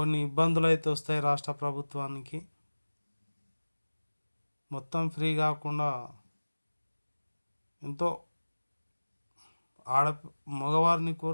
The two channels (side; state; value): both; inverted; correlation -1.00